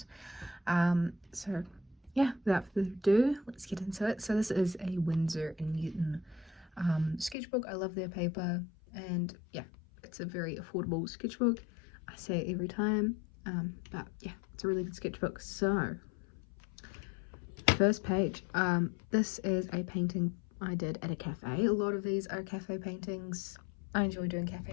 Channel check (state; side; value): drops out; right; at 7.4 s